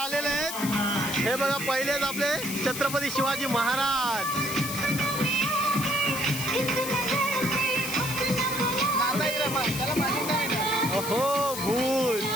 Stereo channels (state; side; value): noise; left; hiss, 6 dB below the sound